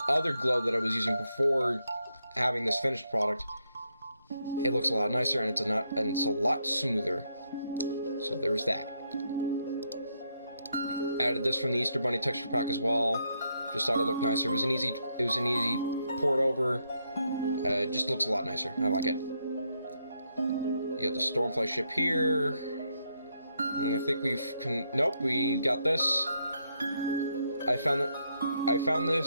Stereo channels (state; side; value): inverted; both; correlation -0.78